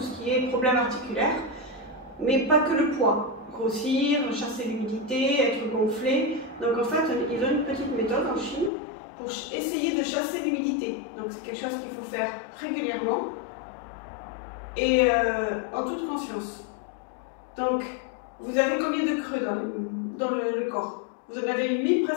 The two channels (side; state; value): right; drops out; at 8.7 s